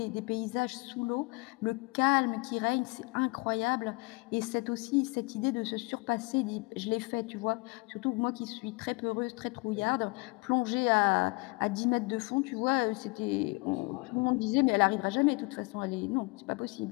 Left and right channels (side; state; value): right; quieter; 27.0 dB